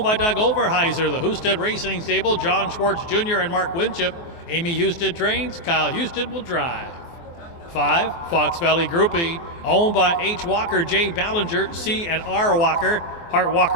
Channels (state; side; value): late; right; 24 ms